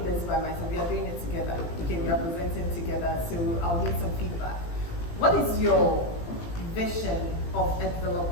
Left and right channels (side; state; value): right; late; 18 ms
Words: this by myself, we are doing it together. Okay, we are presenting together, so I'll need some feedback. What is your vision of a